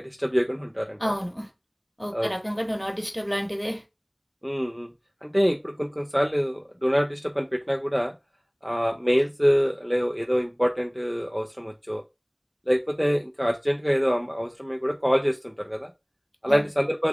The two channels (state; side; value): identical; both; correlation 1.00